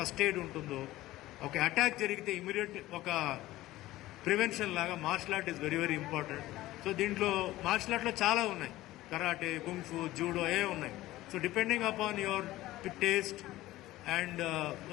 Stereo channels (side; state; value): right; quieter; 16.7 dB